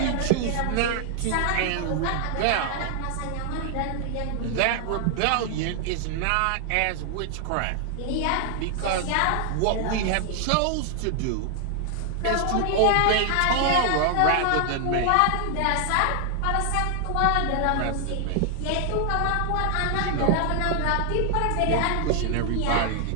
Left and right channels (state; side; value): different; both; correlation 0.00